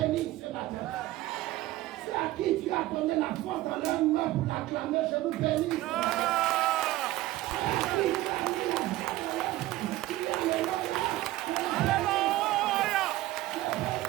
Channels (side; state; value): left; quieter; 16.6 dB